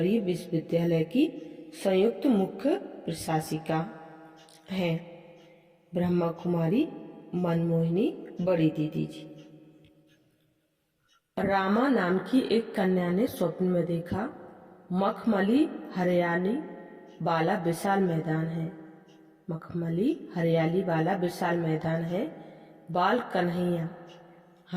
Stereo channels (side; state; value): both; identical; correlation 1.00